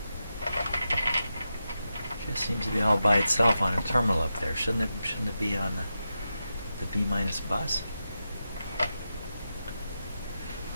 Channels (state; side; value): inverted; both; correlation -0.89